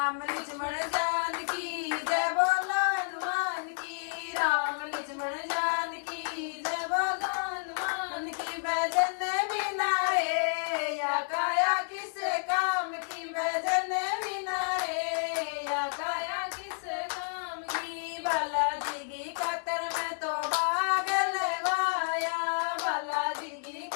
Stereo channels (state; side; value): silent; right; digital silence